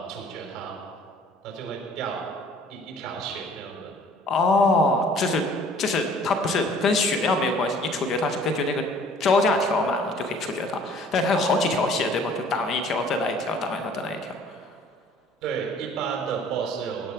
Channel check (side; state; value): both; normal; correlation 0.53